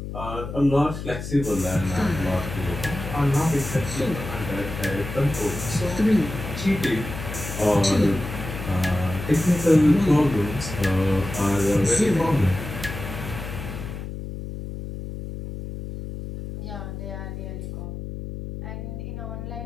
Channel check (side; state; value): left; noise; hum, 8 dB below the sound